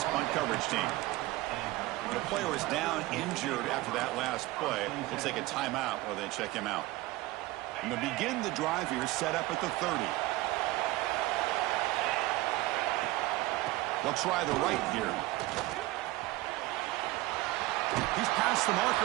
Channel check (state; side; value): quieter; left; 18.9 dB